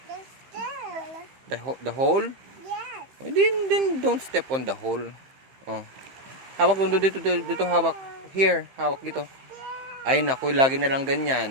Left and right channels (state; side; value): late; left; 15 ms